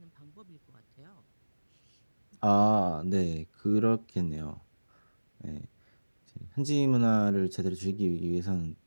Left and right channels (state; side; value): inverted; both; correlation -1.00